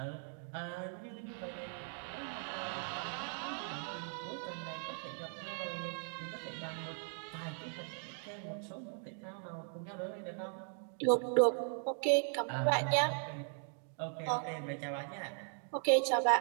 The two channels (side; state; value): left; silent; 52 dB below the other